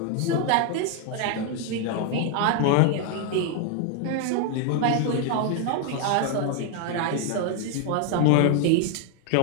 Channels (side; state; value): both; different; correlation 0.01